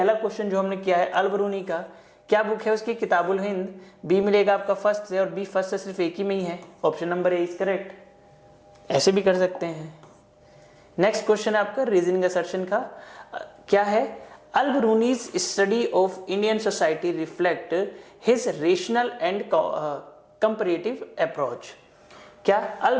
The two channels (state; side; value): identical; both; correlation 1.00